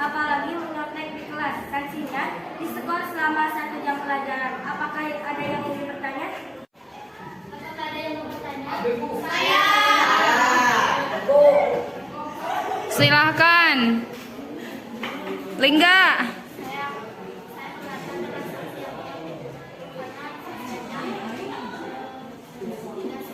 menyontek di kelas. Sanksinya diskor selama 1 jam pelajaran. Apakah ada yang ingin bertanya? Apakah ada yang mau bertanya? Saya. Silahkan. Lingga.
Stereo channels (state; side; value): identical; both; correlation 1.00